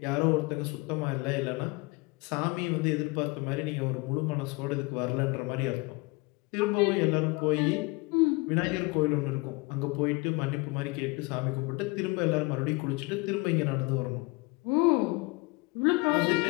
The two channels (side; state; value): right; quieter; 25.7 dB